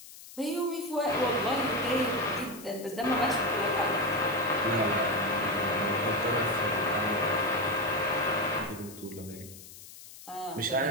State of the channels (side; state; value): left; noise; hiss, 17 dB below the sound